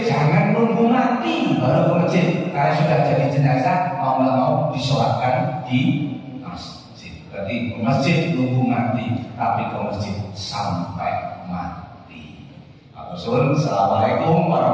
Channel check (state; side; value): identical; both; correlation 1.00